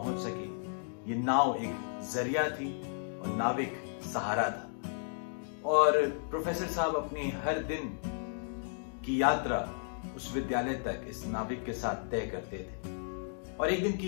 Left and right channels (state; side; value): silent; right; digital silence